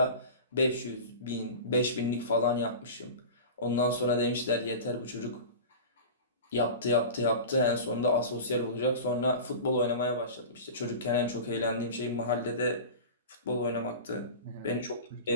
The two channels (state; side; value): inverted; both; correlation -0.32